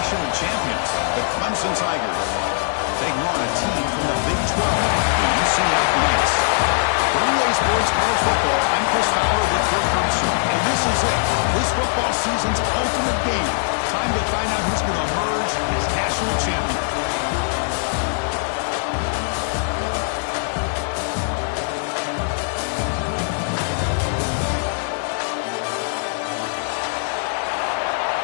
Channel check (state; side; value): silent; right; digital silence